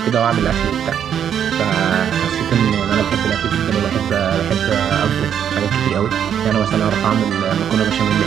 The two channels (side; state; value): left; quieter; 8.9 dB